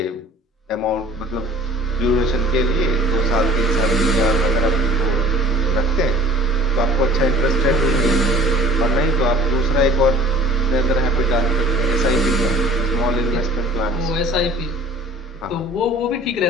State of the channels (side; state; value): both; normal; correlation 0.48